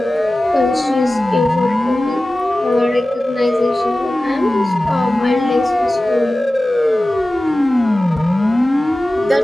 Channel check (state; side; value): normal; both; correlation 0.96